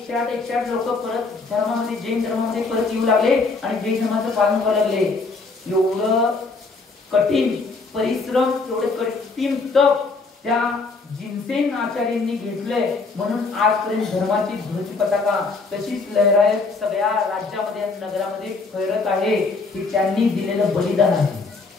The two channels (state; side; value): quieter; right; 4.0 dB